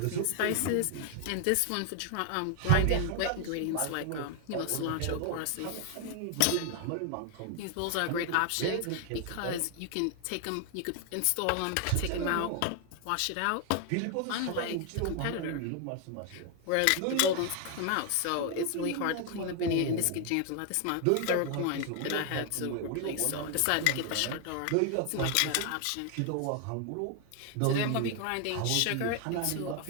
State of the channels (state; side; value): different; both; correlation 0.00